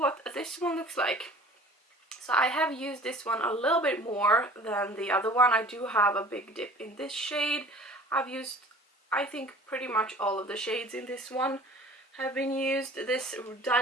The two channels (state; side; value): normal; both; correlation 0.46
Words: this one looks like. So I have used this one a little bit more than the other one. I do have a big dip in this shade. I've used, I think, pretty much all of the shades in this one have been used. This